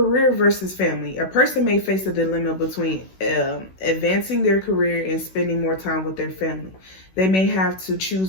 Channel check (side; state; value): right; late; 16 ms